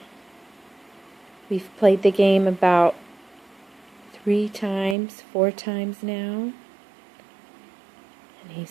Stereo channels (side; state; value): left; drops out; at 5.0 s